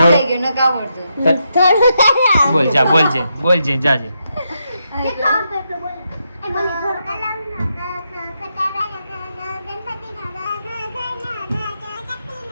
બોલ જા, બોલજે જાજે.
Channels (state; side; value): inverted; both; correlation -0.82